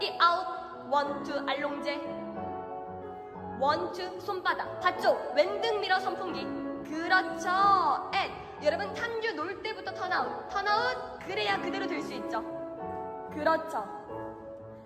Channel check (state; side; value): identical; both; correlation 1.00